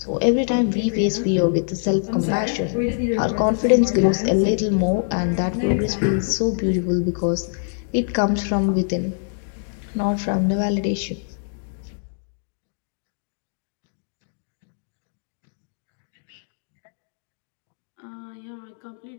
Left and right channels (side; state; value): right; silent; digital silence